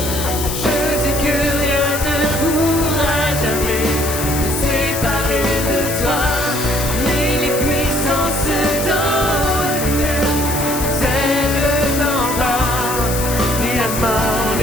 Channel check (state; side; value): noise; left; hiss, 5 dB below the sound